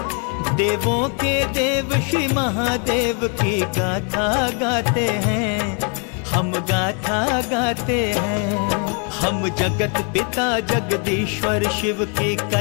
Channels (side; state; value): right; quieter; 39.1 dB